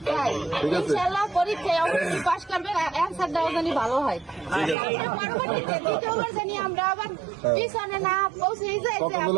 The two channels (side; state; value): left; drops out; at 4.8 s